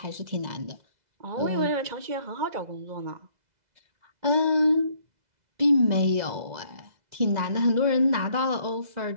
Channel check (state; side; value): late; left; 2.0 ms